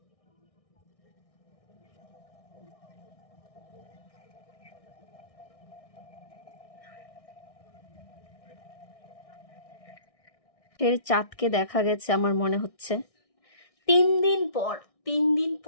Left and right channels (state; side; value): late; right; 1.6 ms